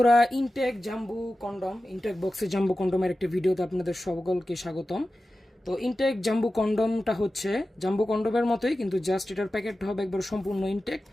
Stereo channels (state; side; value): normal; both; correlation 0.94